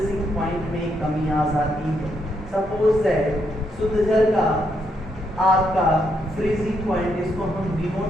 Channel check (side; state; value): both; normal; correlation 0.77